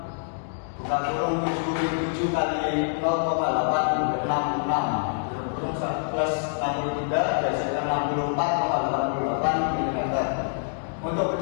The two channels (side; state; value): right; silent; digital silence